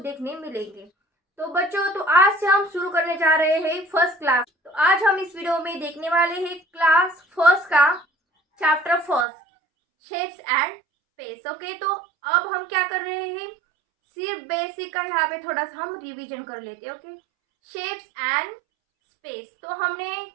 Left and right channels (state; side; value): drops out; left; at 9.2 s